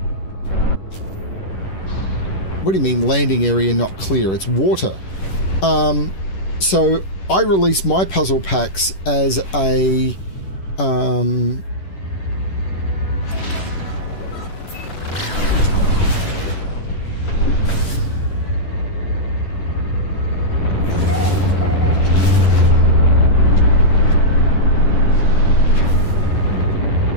What do you mean landing area not clear? It's water. So I release my puzzle packs as a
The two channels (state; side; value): late; right; 10 ms